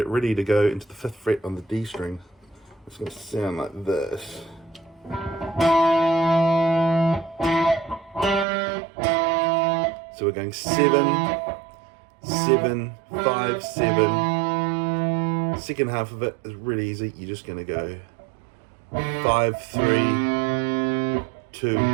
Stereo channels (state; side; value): drops out; left; at 8.5 s